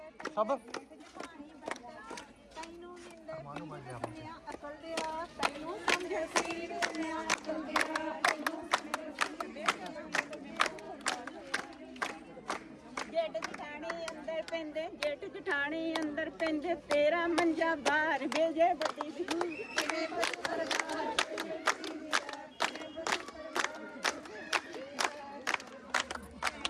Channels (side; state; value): both; identical; correlation 1.00